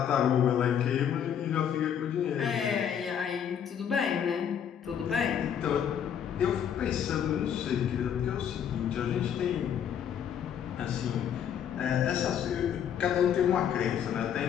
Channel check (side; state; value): right; quieter; 8.8 dB